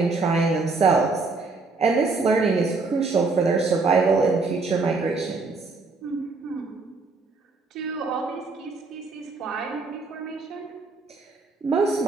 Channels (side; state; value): left; quieter; 3.9 dB